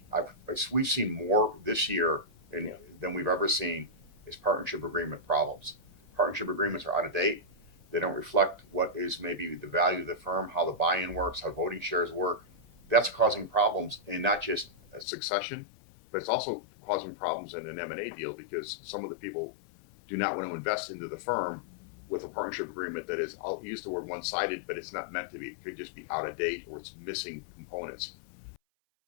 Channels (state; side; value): drops out; right; at 15.1 s